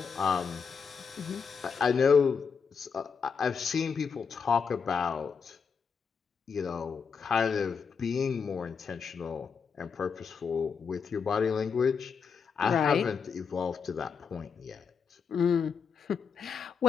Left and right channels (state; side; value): quieter; right; 6.1 dB